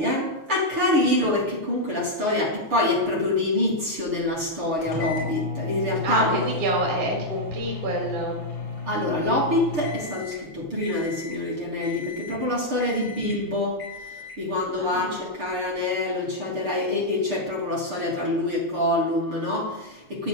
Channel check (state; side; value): late; left; 6.7 ms